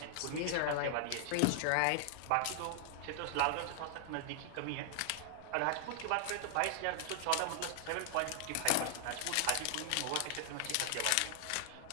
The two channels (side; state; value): both; different; correlation 0.00